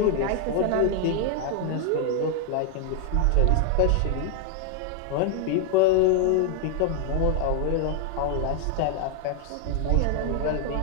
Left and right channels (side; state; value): both; different; correlation 0.00